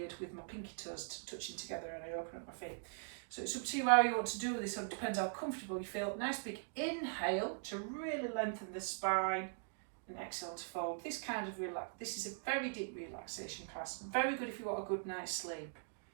with my pinky toes touching together, and I open up my feet. So it's up to you how you want to do this. So it depends how comfortable you feel. Nice big inhale to really lengthen the spine, and exhale to fold. This kind of this is a very deep relaxation class. Very good if you want a good night's sleep.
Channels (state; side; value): silent; left; digital silence